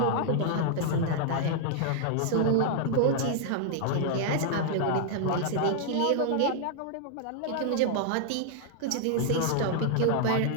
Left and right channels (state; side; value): different; both; correlation -0.01